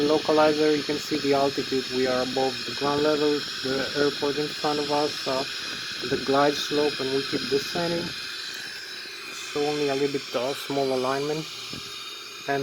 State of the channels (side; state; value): both; identical; correlation 1.00